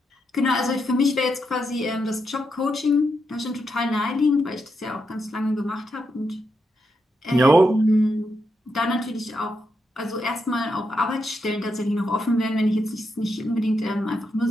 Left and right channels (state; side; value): normal; both; correlation 0.83